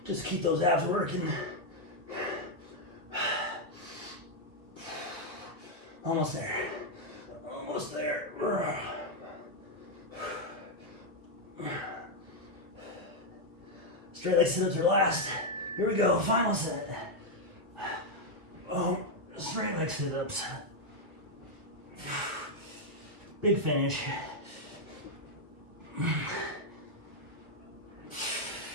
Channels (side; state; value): left; late; 1.6 ms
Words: Just keep those abs working. Almost there. Almost there. Straight leg sit-ups are last. Here we go, final set. Oh, straight leg sit-ups. Big finish.